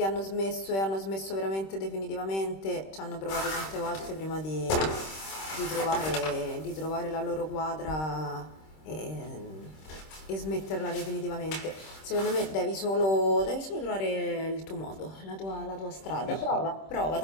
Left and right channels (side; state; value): right; late; 26 ms